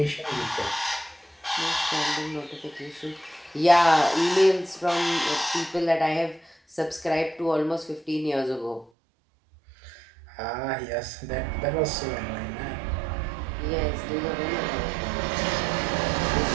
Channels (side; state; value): left; drops out; at 8.9 s